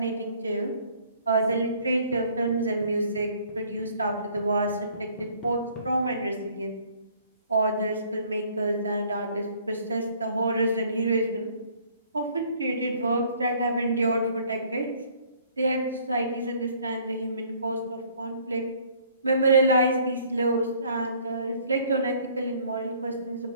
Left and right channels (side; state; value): both; inverted; correlation -0.59